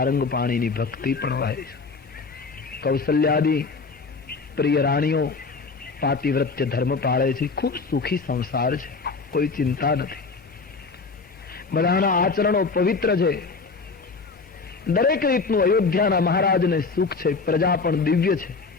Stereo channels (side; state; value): right; quieter; 4.4 dB